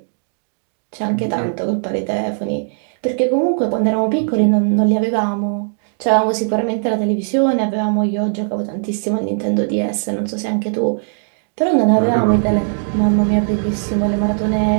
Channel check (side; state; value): left; silent; digital silence